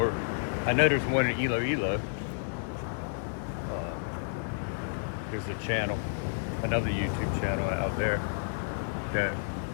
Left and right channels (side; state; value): right; silent; digital silence